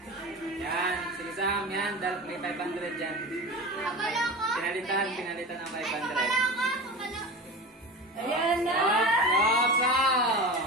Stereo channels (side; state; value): both; normal; correlation 0.30